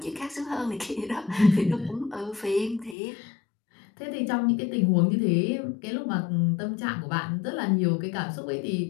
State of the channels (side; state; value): right; drops out; at 3.0 s